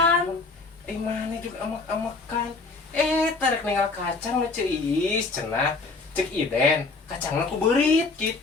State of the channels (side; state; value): right; quieter; 3.9 dB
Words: Mana juga amak-amakan. Tarik ninggal kacang nu ceu Iis cenah. Cek Iden, kacangna ku beurit